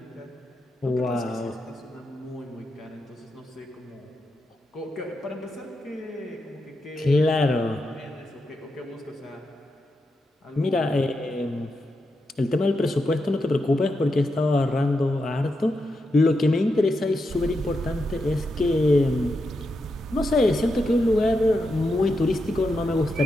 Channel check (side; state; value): both; normal; correlation 0.86